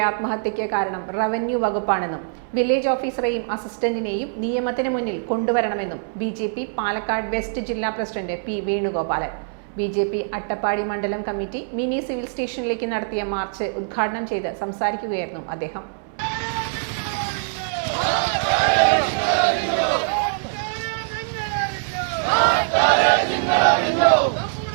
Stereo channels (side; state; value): left; silent; 63 dB below the other